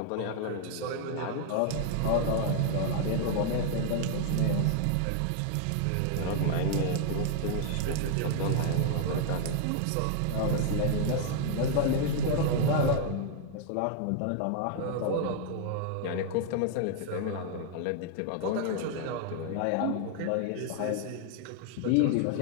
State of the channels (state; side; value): different; both; correlation 0.00